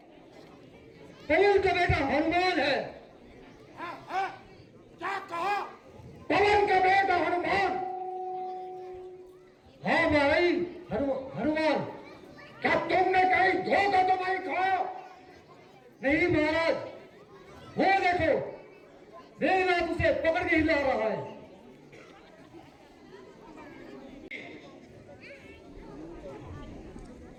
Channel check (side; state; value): both; identical; correlation 1.00